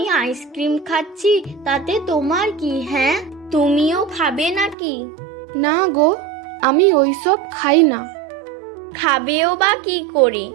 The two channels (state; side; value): drops out; left; at 4.8 s